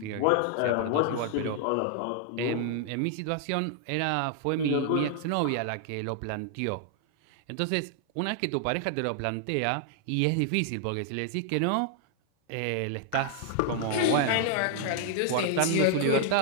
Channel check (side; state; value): both; different; correlation 0.00